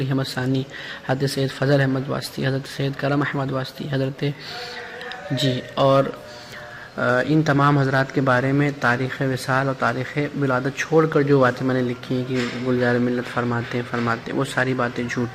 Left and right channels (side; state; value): both; identical; correlation 1.00